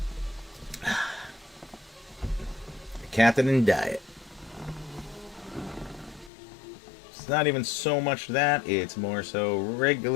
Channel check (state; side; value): drops out; right; at 6.3 s